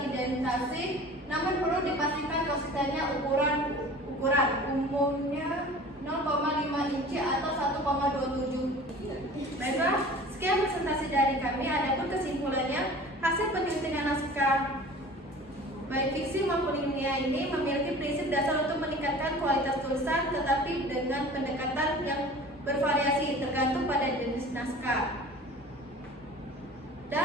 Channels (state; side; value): normal; both; correlation 0.42